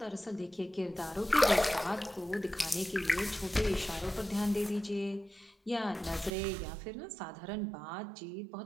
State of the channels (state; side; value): drops out; left; at 6.3 s